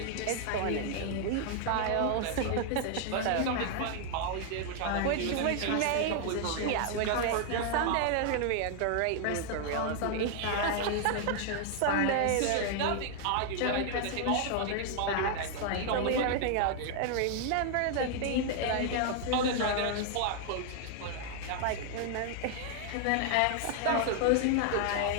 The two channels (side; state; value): both; different; correlation 0.00